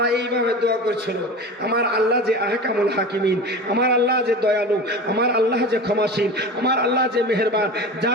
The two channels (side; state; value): both; normal; correlation 0.32